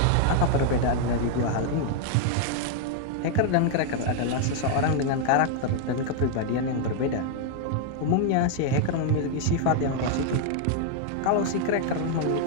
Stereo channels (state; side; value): different; both; correlation 0.00